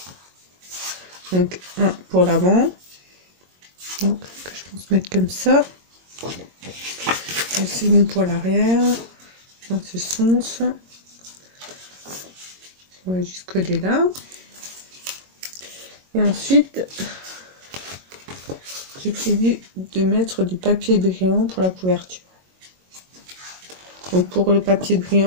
Donc un pour l'avant, donc que je pense mettre comme ça. Le second pour l'arrière, dans ce sens. On va juste coller là. Et ensuite, j'ai prévu de mettre du papier brillant pour la couverture. Donc pour le papier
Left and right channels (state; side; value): late; left; 22 ms